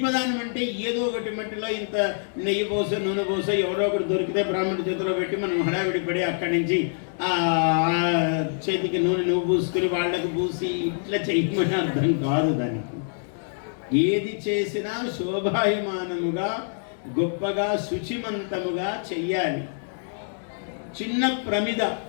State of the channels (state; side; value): silent; right; digital silence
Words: అంటే ఏదో ఒకటి మట్టిలో ఇంత నెయ్యి పోసో నూనె పోసో ఎవరో ఒకటి దొరికితే బ్రాహ్మణుడి చేతిలో పెట్టి మనం హడావిడి పడి అక్కడి నుంచి ఆ చేతికి నూనె నువ్వు పూసుకుని వాళ్ళకు పూసి ఇట్లా చెయ్యమని అర్థం కాదు. దానికి ఏది చేసినా శోభాయమానముగా గొప్పగా శుచిమంతముగా చెయ్యాలి. చిన్న ప్రమిద